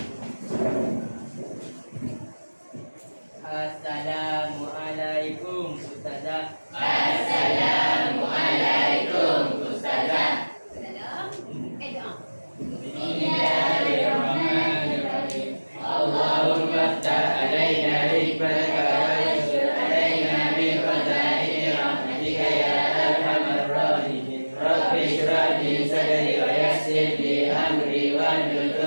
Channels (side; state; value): both; inverted; correlation -1.00